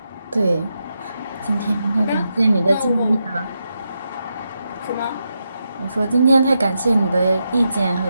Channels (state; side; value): inverted; both; correlation -0.86